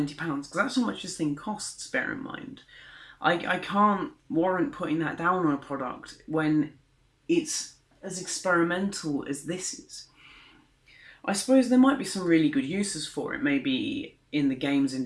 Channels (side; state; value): both; identical; correlation 1.00